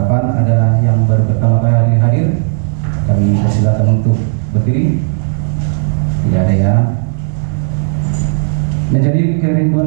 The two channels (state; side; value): silent; left; digital silence